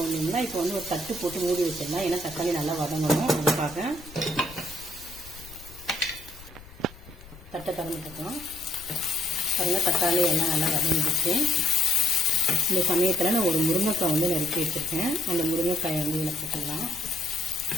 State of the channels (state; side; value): noise; left; rumble, 19 dB below the sound